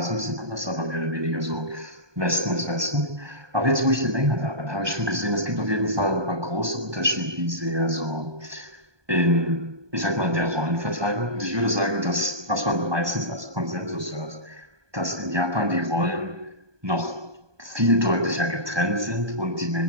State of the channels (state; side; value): late; left; 1.2 ms